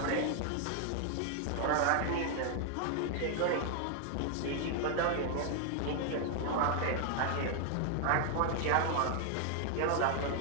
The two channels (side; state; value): both; different; correlation 0.00